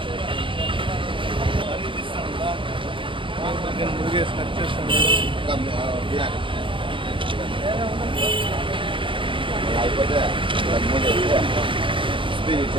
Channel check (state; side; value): late; left; 0.25 ms